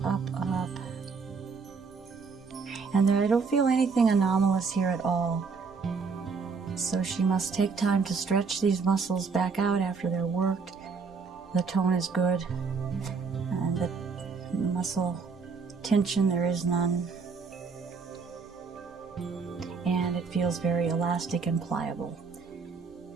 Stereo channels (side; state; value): left; quieter; 5.0 dB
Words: up, up. And there, I don't feel anything anomalous here at all. So she must take time to stretch these muscles back out after they're worked. The tone is good, and the muscle tension, there is none. And it feels very elastic and pliable.